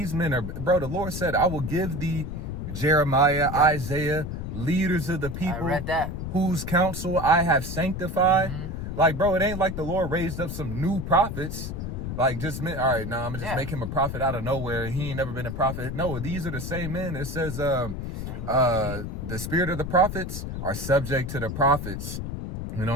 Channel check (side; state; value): left; noise; rumble, 5 dB below the sound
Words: men are, bro, the Lord said, I will give thee Jeremiah, Isaiah, leaders of the people. I read that. Whose counsel I have sanctified. Like, bro, it ain't like the Lord raised up some new prophets. Like, just all right, now I'm gonna just make him a prophet out of nowhere. He ain't never been a prophet. No, these are the same men. It says the spirit of the prophets are subject to the prophets. You know